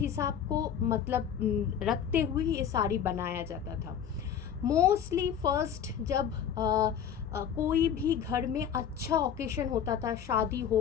को मतलब रखते हुए ये साड़ी बनाया जाता था. मोस्टली फर्स्ट जब कोई भी घर में अच्छा ओकेशन होता था, शादी हो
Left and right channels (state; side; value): quieter; right; 8.5 dB